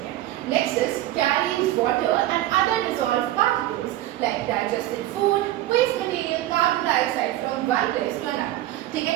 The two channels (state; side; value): quieter; left; 14.8 dB